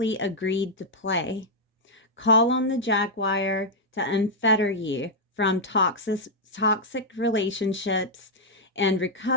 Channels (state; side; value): normal; both; correlation -0.04